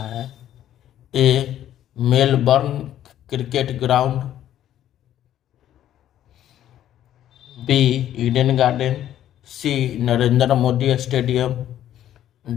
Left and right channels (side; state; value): right; quieter; 11.7 dB